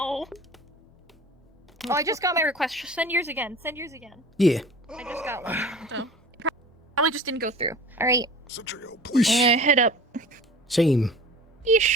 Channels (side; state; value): both; normal; correlation 0.41